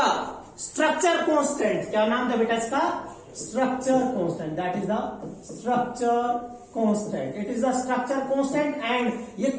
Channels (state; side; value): identical; both; correlation 1.00